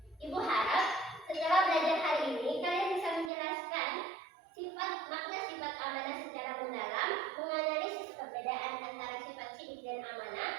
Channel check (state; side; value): drops out; left; at 3.3 s